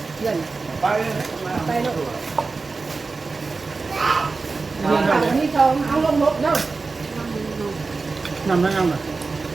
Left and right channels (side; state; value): left; quieter; 4.1 dB